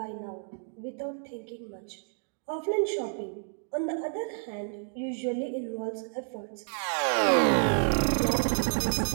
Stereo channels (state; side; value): silent; left; digital silence